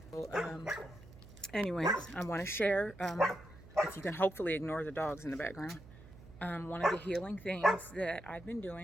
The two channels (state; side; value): noise; right; hum, 19 dB below the sound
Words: So, anyways, I want to share, if you can hopefully ignore the dogs in the background, one of the healing things that I've been